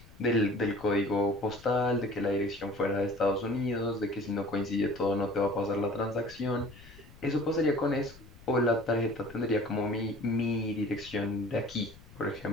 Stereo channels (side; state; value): left; noise; rumble, 21 dB below the sound